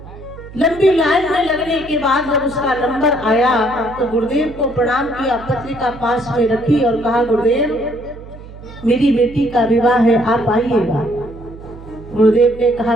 लंबी लाइन में लगने के बाद जब उसका नंबर आया तो गुरुदेव को प्रणाम किया, पत्रिका पास में रखी और कहा, गुरुदेव मेरी बेटी का विवाह है, आप आइएगा। गुरुदेव ने कहा,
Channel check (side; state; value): right; noise; hum, 16 dB below the sound